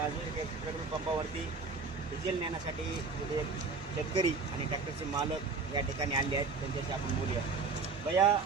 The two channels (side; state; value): left; quieter; 4.5 dB